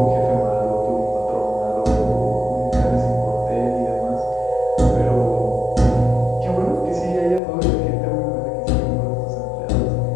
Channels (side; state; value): right; drops out; at 7.4 s